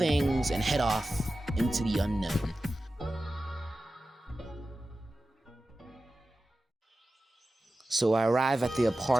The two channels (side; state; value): both; normal; correlation 0.94